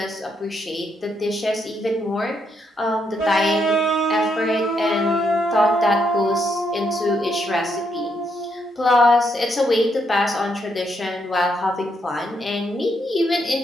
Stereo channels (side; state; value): both; normal; correlation 0.77